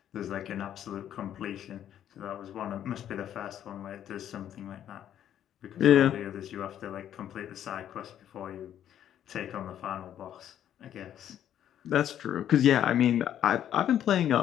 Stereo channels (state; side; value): quieter; right; 10.5 dB